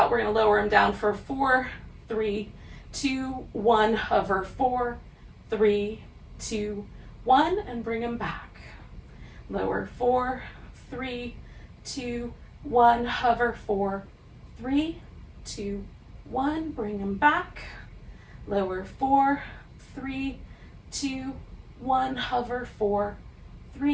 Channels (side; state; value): both; identical; correlation 1.00